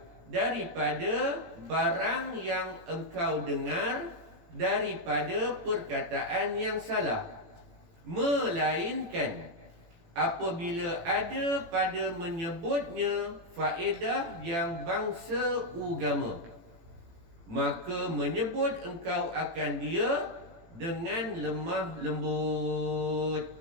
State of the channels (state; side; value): late; left; 18 ms